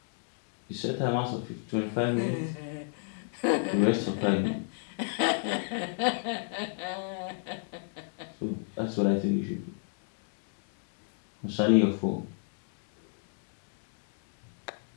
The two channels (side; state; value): right; silent; 56 dB below the other